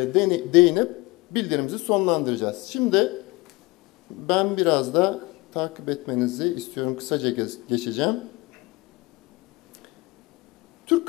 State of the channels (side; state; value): right; quieter; 23.0 dB